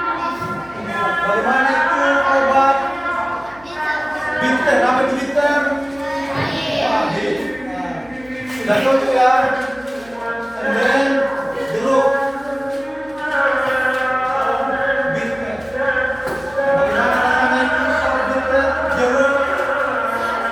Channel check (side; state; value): left; noise; hum, 25 dB below the sound